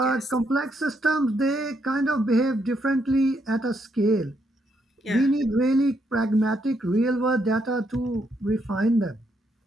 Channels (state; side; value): normal; both; correlation 0.76